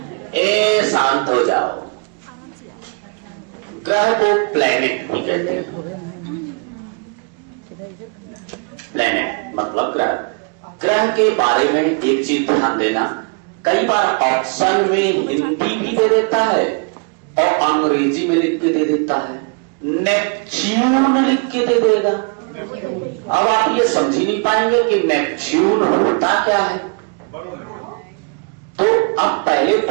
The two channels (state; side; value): quieter; left; 36.8 dB